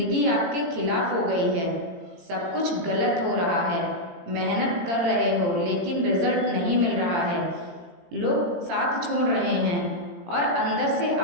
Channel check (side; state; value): left; late; 18 ms